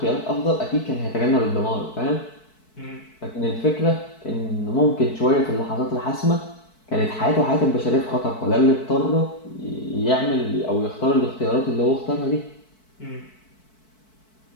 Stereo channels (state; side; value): late; right; 4.6 ms